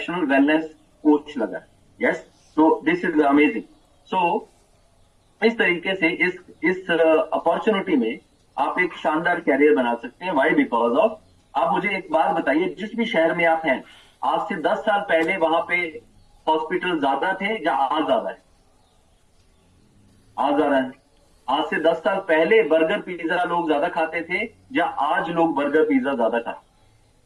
वेलनेस कोच लगा है। यस, तो दिस इज अमेजिंग। सो इस तरीके से इस अपॉर्चुनिटी में आप एक शानदार कैरियर बना सकते हैं। वाई? बिकॉज ऑफ, आप मुझे एक बात बताइए, जिस भी शहर में आप हैं, आज से 10 साल पहले वहां पे हॉस्पिटल ज्यादा थे या आज ज्यादा है? आज ज्यादा है। आज से 10 साल पहले बर्गर पिज्जा लोग ज्यादा खाते थे या आज लोग बर्गर पिज्जा ज्यादा खाते?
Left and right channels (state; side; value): identical; both; correlation 1.00